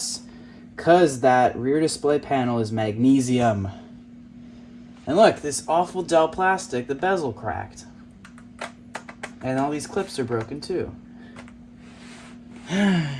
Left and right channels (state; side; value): identical; both; correlation 1.00